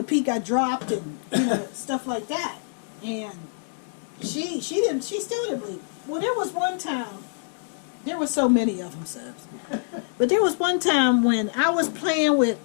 Pete got dropped and stuff like that, and she still didn't believe. Well, there was one time. There were so many of them, Subs. But there was one time when I was playing with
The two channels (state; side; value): silent; right; 61 dB below the other